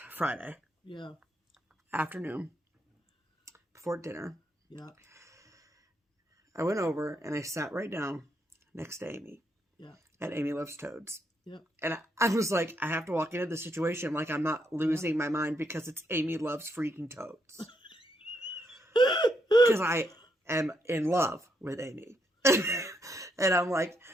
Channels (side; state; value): both; normal; correlation 0.77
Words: Yeah. Afternoon. Before dinner. Yeah. I went over and I sat right down next to Amy. Yeah. At Amy Loves Toads. Yep. And I was like, I have to walk into the situation like I'm not losing my mind because it's Amy Loves Freaking Toads. Because I am in love with Amy. And I'm like,